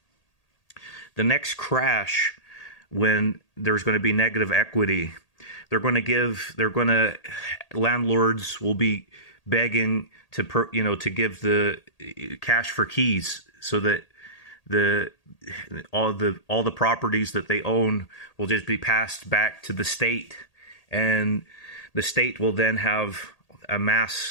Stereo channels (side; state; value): right; late; 1.8 ms